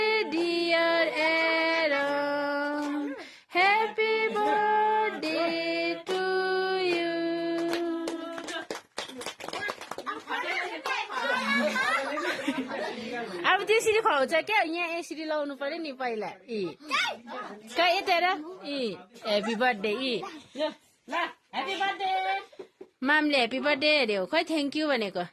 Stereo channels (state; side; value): identical; both; correlation 1.00